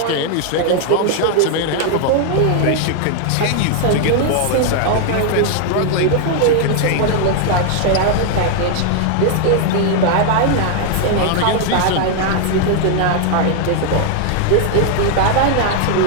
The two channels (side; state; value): both; different; correlation 0.00